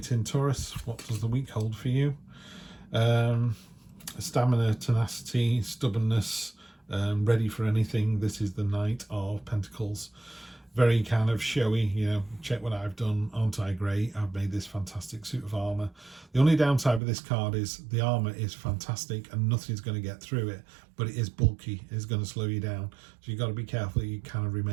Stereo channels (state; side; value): drops out; left; at 17.0 s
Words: in, Taurus. What does the week hold for you? Stamina, tenacity, stubbornness, ready for anything. This is the Knight of Pentacles. Very kind of showy, you know, check what I've done, aren't I great? I've made this fantastic suit of armour. The only downside with this card is the armour is fantastic and nothing's going to get through it, but it is bulky, it's going to slow you down. So you've got to be careful that you kind of